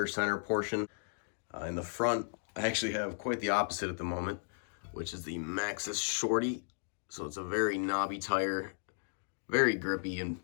center portion. In the front, I actually have quite the opposite at the moment, which is the Maxxis Shorty. So it's a very knobby tire, very grippy in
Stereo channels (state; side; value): silent; right; digital silence